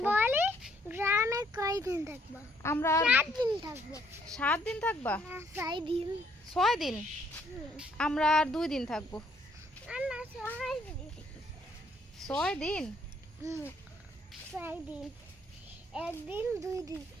বলি গ্রামে কয়দিন থাকবো? আমরা 7 দিন থাকবো। 7 দিন থাকবা? না, 6 দিন। 6 দিন? আমরা আর 2 দিন থাকবো। না, 6 দিন। 6 দিন? 6 দিন। 1 দিন 2 দিন,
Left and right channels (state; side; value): normal; both; correlation 0.68